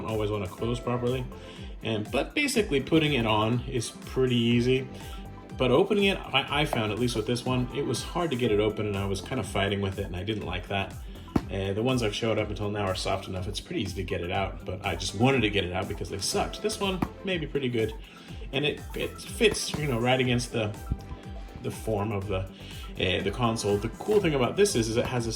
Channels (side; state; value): both; identical; correlation 1.00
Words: always want to close properly. But basically putting it on is pretty easy. But opening it, I found, at least with this one, it was hard to get it open, and I was kind of fighting with it, and I didn't like that. The ones I've showed up until now are soft enough. It's pretty easy to get it out, but I just wanted to get it out because they sucked. This one may be pretty good, and it fits, right against the form of the console. The cool thing about this is it has a